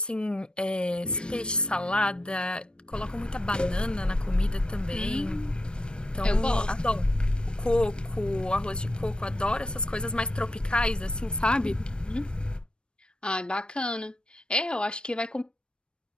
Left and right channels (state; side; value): late; right; 0.053 ms